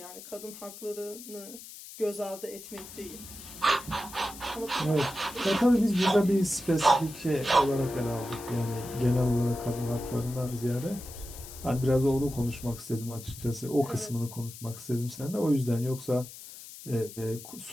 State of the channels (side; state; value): left; noise; hiss, 14 dB below the sound